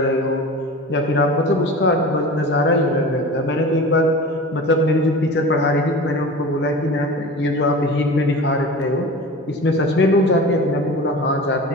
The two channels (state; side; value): normal; both; correlation 0.35